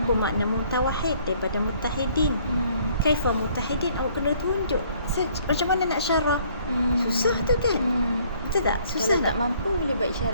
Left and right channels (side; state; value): both; inverted; correlation -0.61